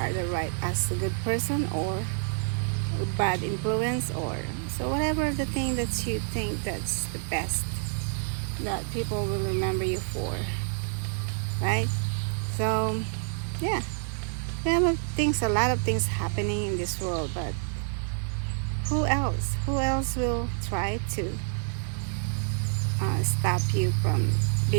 as a good person or a bad influence, or so whatever the thing that you think that's the best that people will remember you for, right? So yeah, there are a lot of things happening in this world, but who else will try to stop you from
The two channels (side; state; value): left; silent; 59 dB below the other